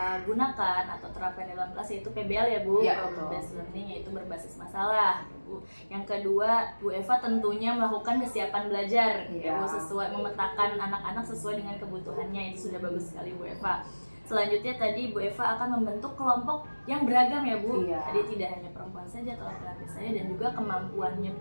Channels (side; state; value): both; inverted; correlation -1.00